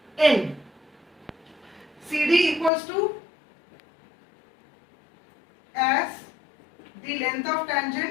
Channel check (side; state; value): right; drops out; at 2.7 s